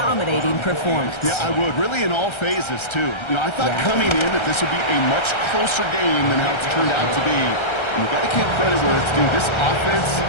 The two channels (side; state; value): right; late; 1.3 ms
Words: performance. Yeah, I would. Really in all phases, too. You know, I thought coming in that this would be a much closer game than how it's turned out to be. And you've got to give credit where it's due. This offense